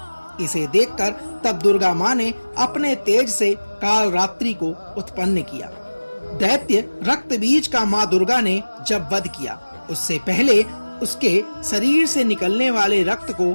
इसे देखकर तब दुर्गा माँ ने अपने तेज से कालरात्रि को उत्पन्न किया। दैत्य रक्तबीज का माँ दुर्गा ने जब वध किया, उससे पहले उसके शरीर से निकलने वाले रक्त को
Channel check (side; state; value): both; inverted; correlation -1.00